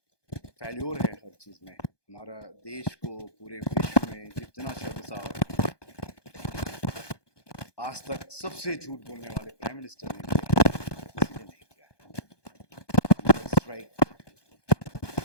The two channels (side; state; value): right; late; 1.2 ms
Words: फेल्योर है हर चीज़ में। हमारा देश को पूरे विश्व में जितना शर्मसार आज तक सबसे झूठ बोलने वाले प्राइम मिनिस्टर ने किसी ने नहीं किया है। स्ट्राइक